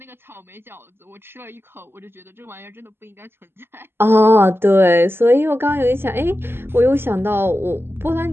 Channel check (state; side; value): late; left; 0.11 ms